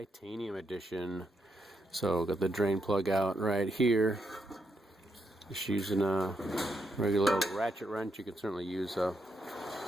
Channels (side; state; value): both; normal; correlation 0.80